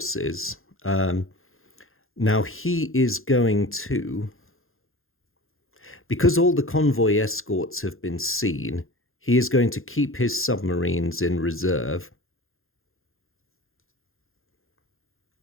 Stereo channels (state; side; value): late; right; 0.60 ms